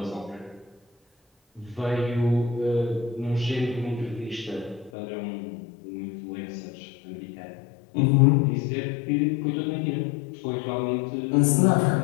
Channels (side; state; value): right; drops out; at 4.9 s